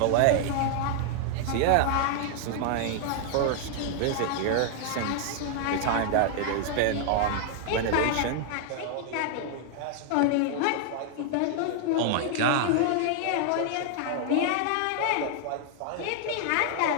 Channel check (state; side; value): different; both; correlation 0.00